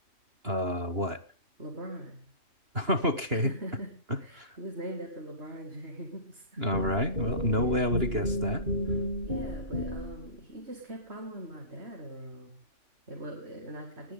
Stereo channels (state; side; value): late; left; 2.9 ms